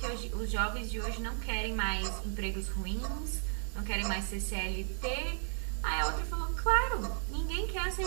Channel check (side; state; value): left; silent; 55 dB below the other